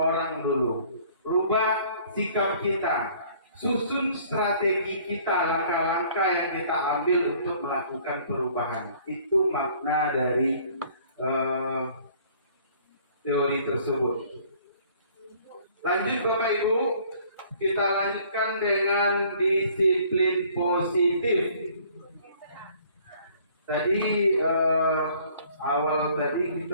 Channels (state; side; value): inverted; both; correlation -0.56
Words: dulu. Rubah sikap kita, susun strategi kita, langkah-langkah yang kita ambil untuk melakukan perubahan. Itu makna dari teori tersebut. Lanjut Bapak Ibu, kita lanjutkan dengan disiplin positif. Tadi awal tadi